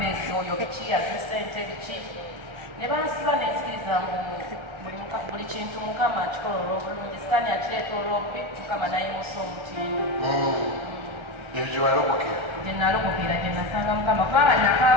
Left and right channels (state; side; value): late; left; 1.3 ms